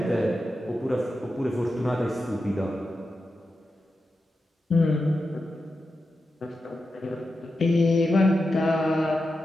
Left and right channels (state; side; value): normal; both; correlation 0.90